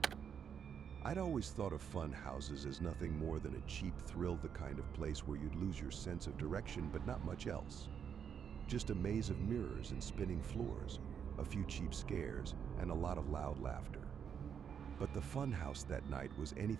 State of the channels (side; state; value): left; quieter; 7.7 dB